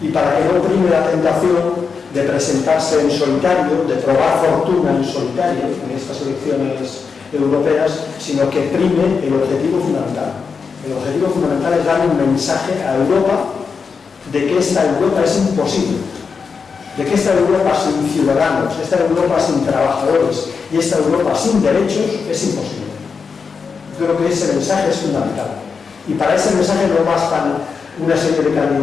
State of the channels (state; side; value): quieter; right; 5.4 dB